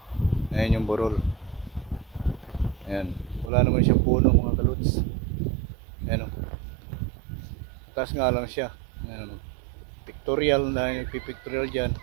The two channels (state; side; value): drops out; left; at 3.5 s